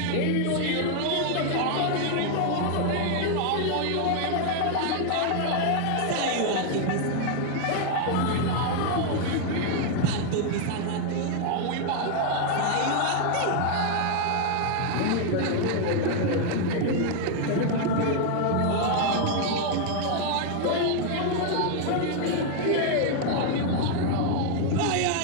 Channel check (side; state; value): both; different; correlation 0.00